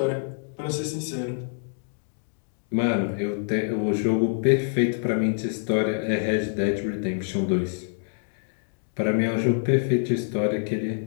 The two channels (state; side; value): silent; right; digital silence